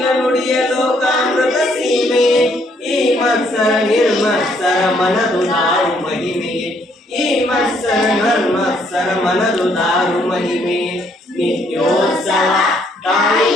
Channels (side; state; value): both; normal; correlation 0.69